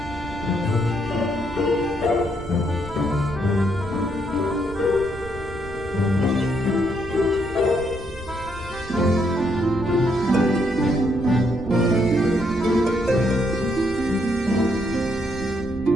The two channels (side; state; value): both; normal; correlation 0.74